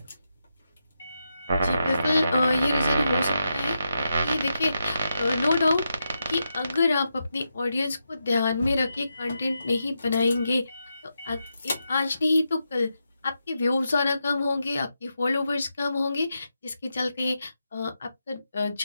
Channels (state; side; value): inverted; both; correlation -0.86